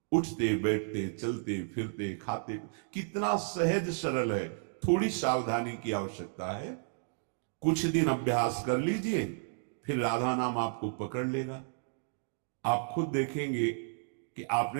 उठते बैठते चलते फिरते खाते, कितना सहज सरल है। थोड़ी सावधानी की आवश्यकता है। कुछ दिन अभ्यास कर लीजिए, फिर राधा नाम आपको पकड़ लेगा। आप खुद देखेंगे कि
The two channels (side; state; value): left; silent; digital silence